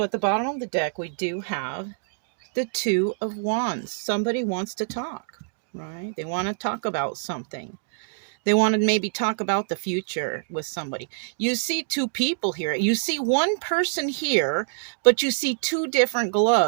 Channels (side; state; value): left; silent; digital silence